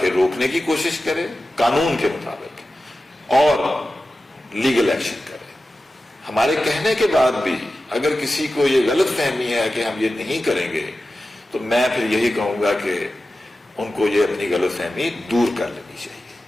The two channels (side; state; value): both; normal; correlation 0.94